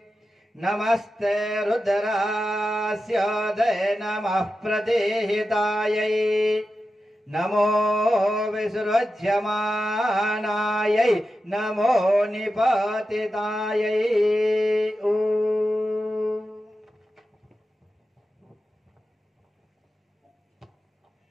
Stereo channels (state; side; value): normal; both; correlation 0.91